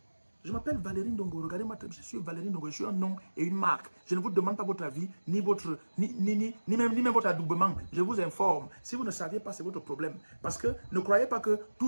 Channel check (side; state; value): both; inverted; correlation -1.00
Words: Je m'appelle Valérie Ndongo, regardez-moi, je suis Valérie Ndongo, je suis un nom et une marque. Je ne vous demande pas votre avis, ni même votre adoubement. Je vous informe. Si vous ne saviez pas, c'est votre problème. Parce que ne croyez pas que